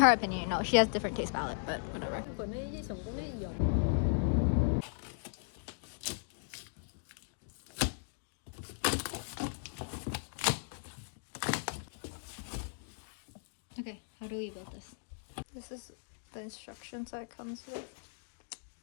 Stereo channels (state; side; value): silent; right; digital silence